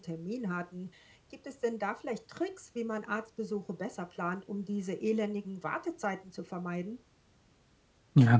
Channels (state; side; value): identical; both; correlation 1.00